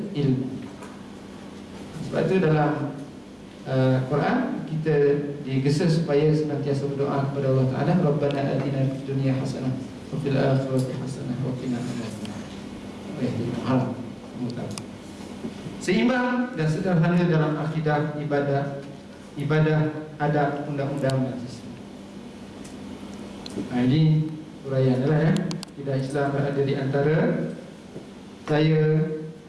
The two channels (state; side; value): identical; both; correlation 1.00